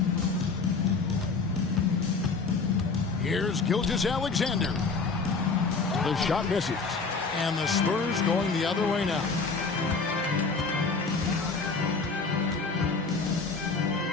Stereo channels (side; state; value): right; quieter; 4.4 dB